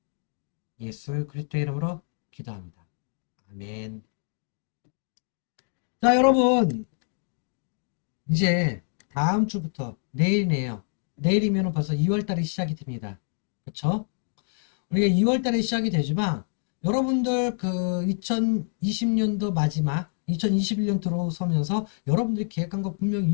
예수 그리스도의 이름으로 기도합니다. 아멘. 자, 여러분, 이제 다음 주부터 내일이네요. 내일이면 벌써 2월달이 시작이 됩니다. 그쵸? 우리가 2월달에 시작이 되지만 여러분들 그 2020년도 마지막 2021년 들어서면서 여러분들이 계획한 거 분명히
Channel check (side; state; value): right; silent; 58 dB below the other